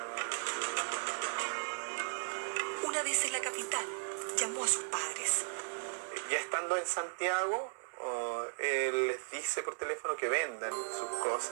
vez en la capital, llamó a sus padres. Ya estando en Santiago, él les dice por teléfono que vendan sus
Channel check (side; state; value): left; silent; digital silence